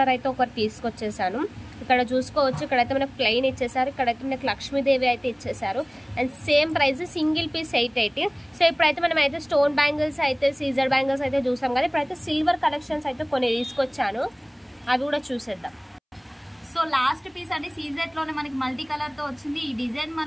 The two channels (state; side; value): identical; both; correlation 1.00